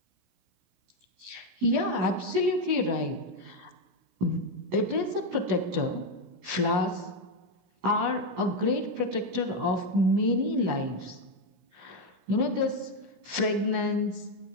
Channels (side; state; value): left; late; 17 ms